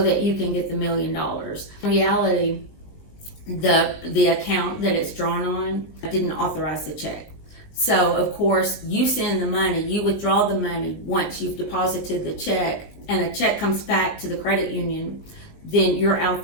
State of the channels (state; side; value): late; right; 19 ms